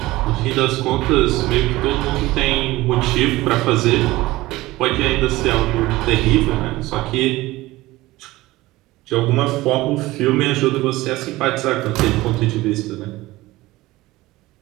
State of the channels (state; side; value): quieter; left; 18.6 dB